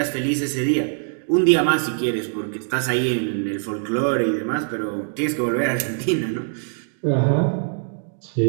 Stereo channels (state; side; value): silent; left; digital silence